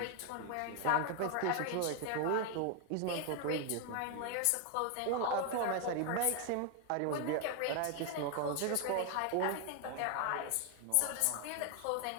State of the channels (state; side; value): different; both; correlation 0.01